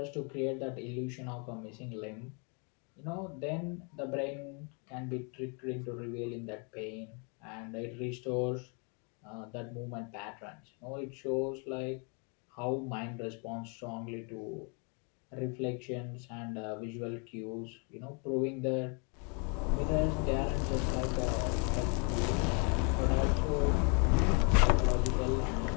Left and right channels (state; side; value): quieter; right; 36.5 dB